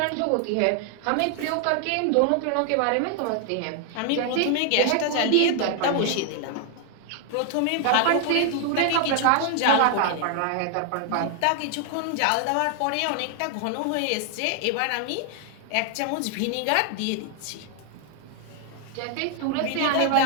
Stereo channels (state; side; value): different; both; correlation 0.00